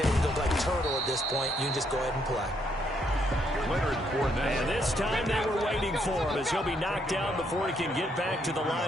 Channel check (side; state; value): both; normal; correlation 0.73